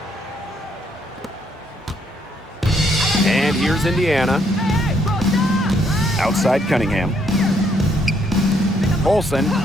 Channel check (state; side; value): normal; both; correlation 0.71